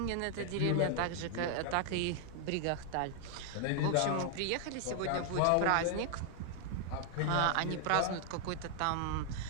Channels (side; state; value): both; different; correlation 0.00